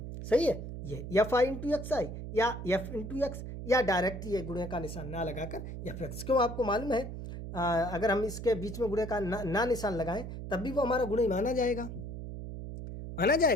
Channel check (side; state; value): right; noise; hum, 8 dB below the sound